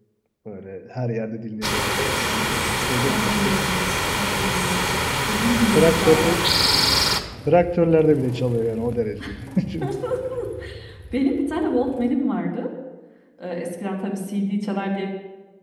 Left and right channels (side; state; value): both; identical; correlation 1.00